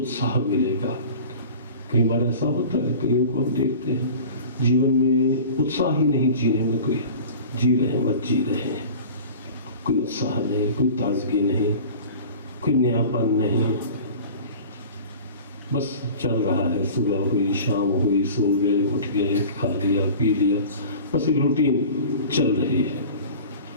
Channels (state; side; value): inverted; both; correlation -0.39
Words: मिलेगा। कई बार ऐसा होता है, कईयों को हम देखते हैं जीवन में उत्साह ही नहीं, जीने में कोई जी रहे हैं, मत जी रहे हैं, कोई उत्साह नहीं, कोई ताजगी नहीं, कोई नयापन नहीं, बस चल रहा है। सुबह हुई, शाम हुई, सो गए, उठ गए, खा लिया, पी लिया, बस एक रूटीन चल रही है।